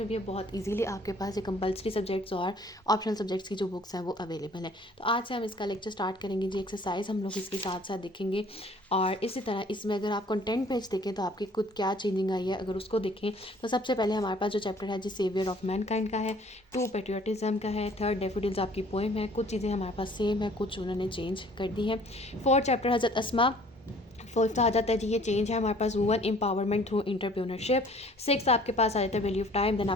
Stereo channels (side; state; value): both; normal; correlation 0.55